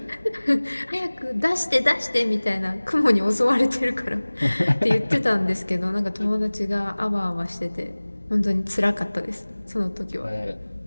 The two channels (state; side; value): inverted; both; correlation -1.00